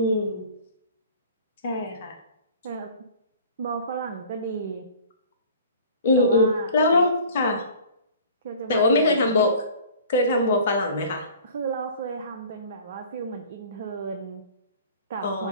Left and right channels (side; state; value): both; inverted; correlation -0.46